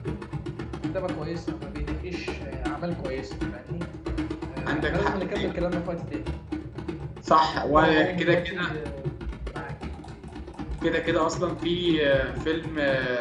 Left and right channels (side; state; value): both; identical; correlation 1.00